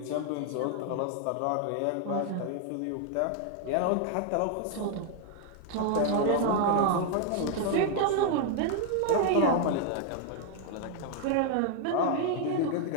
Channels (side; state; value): both; different; correlation 0.00